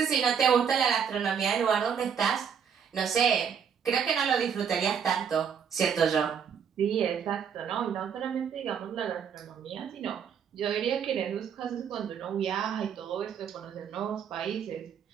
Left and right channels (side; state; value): left; quieter; 7.4 dB